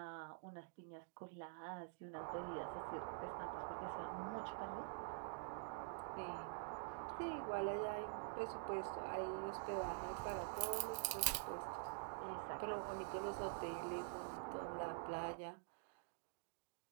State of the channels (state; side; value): silent; left; digital silence